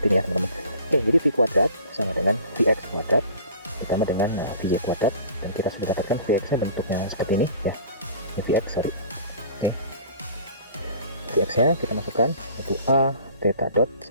ini ya teman-teman. Oke, jadi V kuadrat sama dengan Vx kuadrat ditambah dengan Vy kuadrat, dan kita sudah dapatkan Vx nya bentuknya seperti ini ya. Vx, sorry. Vx nya kita masukkan itu a theta dot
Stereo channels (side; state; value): both; inverted; correlation -0.45